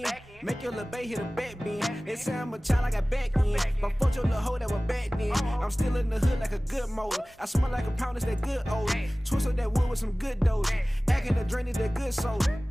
Make your little bae hit a back bend. They say I'm a child, I got back in. But fuck your little hoe that was back then. I'm still in the hood like a good motor. I smell like a pound, it's that good old. Twist up that wood with some good dough. Acting the drain is that good soul.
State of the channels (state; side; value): normal; both; correlation 0.98